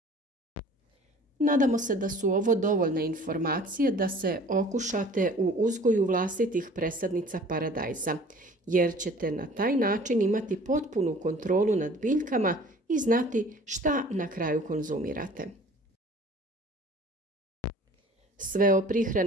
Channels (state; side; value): normal; both; correlation 0.48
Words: Nadamo se da su ovo dovoljne informacije da se okušate u uzgoju vlastitih presadnica paradajza, jer ćete na taj način imati potpunu kontrolu nad biljkama i znati šta na kraju konzumirate. Sve o